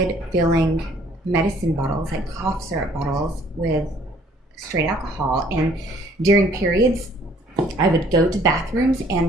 filling medicine bottles, like cough syrup bottles, with straight alcohol. And during periods, I would go to bathrooms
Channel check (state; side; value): normal; both; correlation 0.59